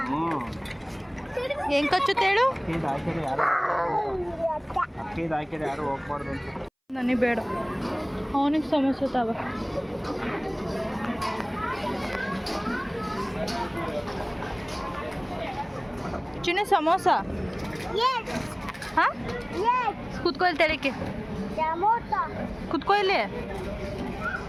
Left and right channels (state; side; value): identical; both; correlation 1.00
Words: ಹೆಂಗ್ ಕಚ್ಚುತ್ತೆ ಹೇಳು? ಹಾಕಿದ್ರೆ ಯಾರು ಹೋಗ್ಬಾರ್ದು ಅಂತ. ನನಗೆ ಬೇಡ. ಅವನಿಗೆ ಸಮಸ್ಯೆ ತಾವ. ಚಿನ್ನ ಸಮೋಸ. ಹಾಂ, ಕುತ್ಕೊ ಇಲ್ಲಿ. ತೆಳಕ್ಕೆ ಕುತ್ಕೊ ಇಲ್ಲಿ.